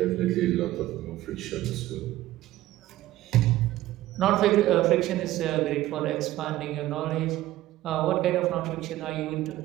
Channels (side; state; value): left; quieter; 15.4 dB